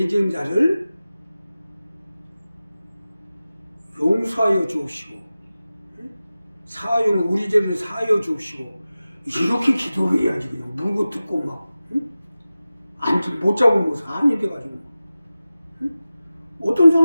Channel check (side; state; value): both; inverted; correlation -0.95